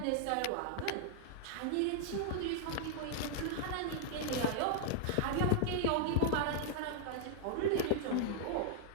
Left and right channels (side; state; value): both; different; correlation 0.00